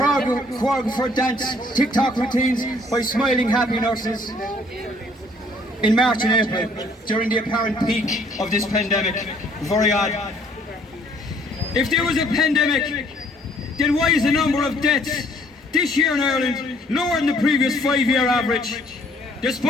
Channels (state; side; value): normal; both; correlation 0.61